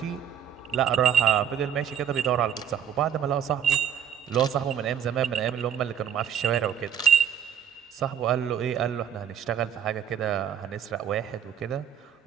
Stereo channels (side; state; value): left; quieter; 9.0 dB